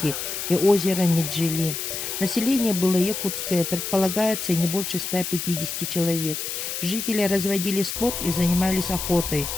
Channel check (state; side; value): noise; left; hiss, 4 dB below the sound